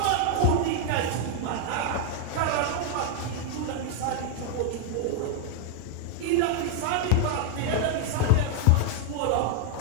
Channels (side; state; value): both; different; correlation 0.00